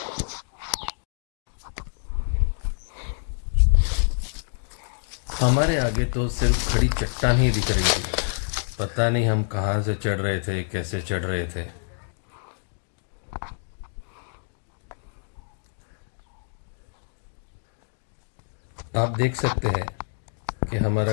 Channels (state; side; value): silent; right; digital silence